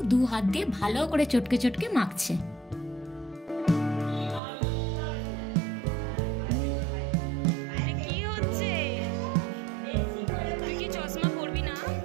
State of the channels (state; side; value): drops out; left; at 4.4 s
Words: 2 হাত দিয়ে ভালো করে চটকে চটকে মাখছে।